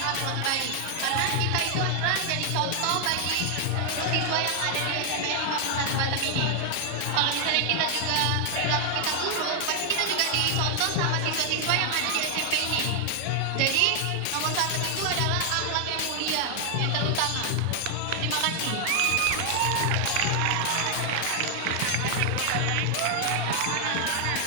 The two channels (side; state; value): both; different; correlation 0.00